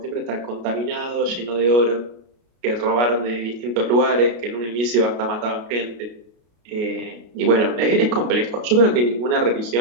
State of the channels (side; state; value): left; late; 33 ms